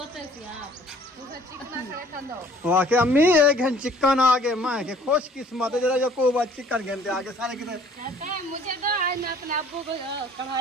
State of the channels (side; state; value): both; normal; correlation 0.55